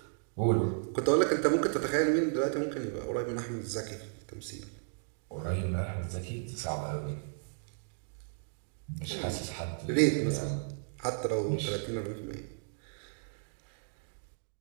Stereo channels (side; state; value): left; silent; digital silence